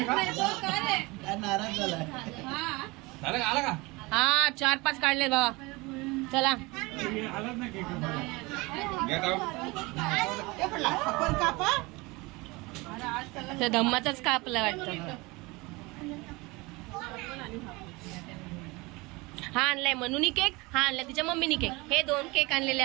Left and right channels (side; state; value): left; quieter; 24.0 dB